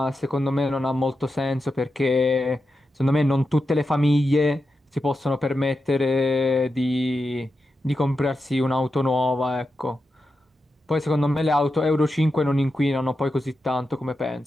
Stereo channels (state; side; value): normal; both; correlation 0.89